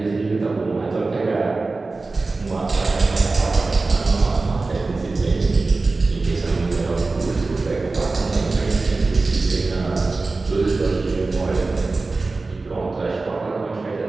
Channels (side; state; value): left; quieter; 3.6 dB